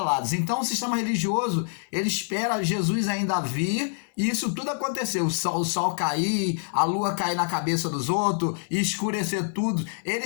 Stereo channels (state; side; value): silent; right; 61 dB below the other